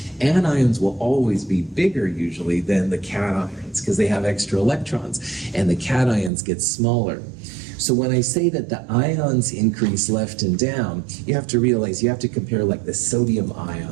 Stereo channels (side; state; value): left; drops out; at 6.3 s